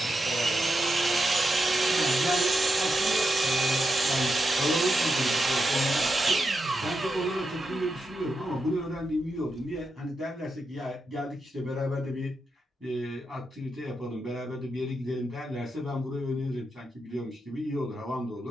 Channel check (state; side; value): normal; both; correlation 0.86